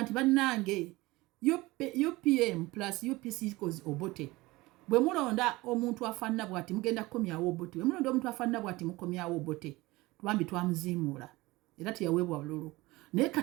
nti bannange UPM plus UPC equals Obote bwe mulonda omuntu afaanana bw'ati mugenda kukomyawo Obote bwe mulonda omuntu afaanana bw'ati mukomyawo Obote twambi twamuziimuula era teyaweebwa bululu naye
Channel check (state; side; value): quieter; left; 20.7 dB